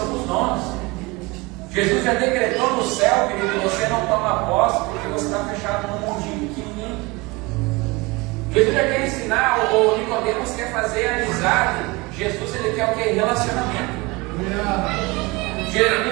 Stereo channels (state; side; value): quieter; left; 24.4 dB